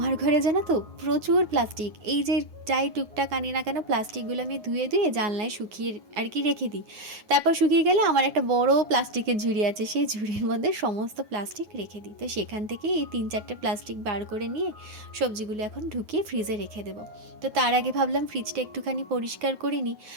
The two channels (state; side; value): late; left; 9.5 ms